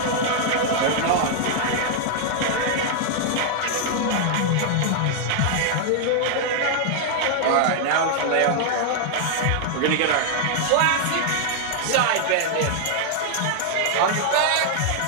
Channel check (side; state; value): both; different; correlation 0.00